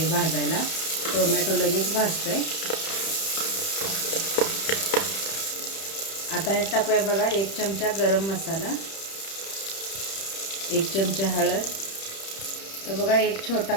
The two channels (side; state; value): right; late; 31 ms